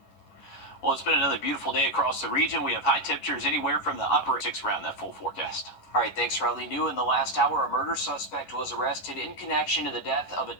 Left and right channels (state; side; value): late; right; 11 ms